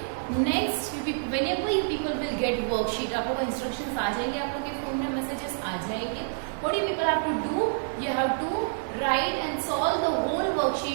Next, whenever you people will get worksheet, आप लोगों को instructions आ जाएंगे, आप लोगों के phone में messages आ जाएंगे. What do you people have to do? You have to write and solve the whole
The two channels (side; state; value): left; silent; digital silence